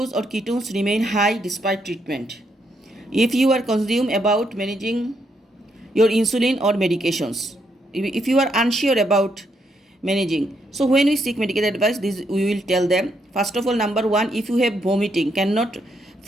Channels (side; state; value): both; normal; correlation 0.77